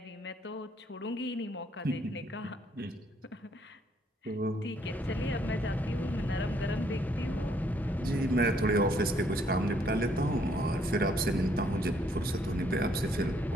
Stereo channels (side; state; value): both; normal; correlation 0.67